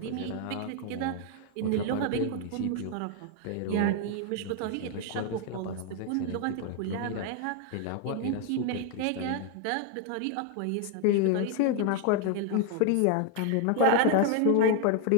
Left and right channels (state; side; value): different; both; correlation 0.00